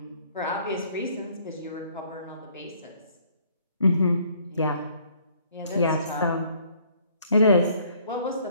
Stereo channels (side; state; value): both; inverted; correlation -0.61